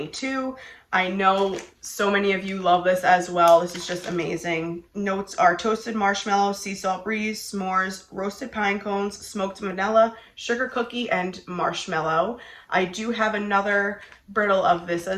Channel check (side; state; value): both; identical; correlation 1.00